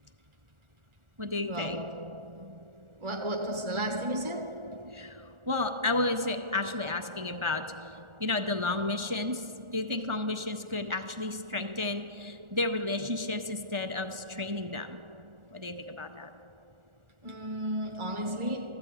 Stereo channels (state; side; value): late; left; 1.4 ms